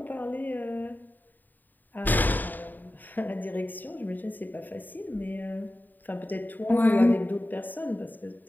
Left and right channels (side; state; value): right; late; 0.088 ms